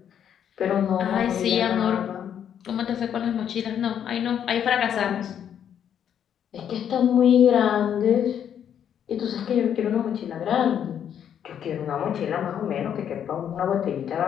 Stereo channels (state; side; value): quieter; right; 9.1 dB